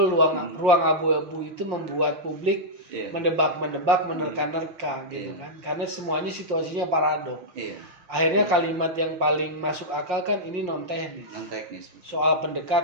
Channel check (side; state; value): left; late; 5.6 ms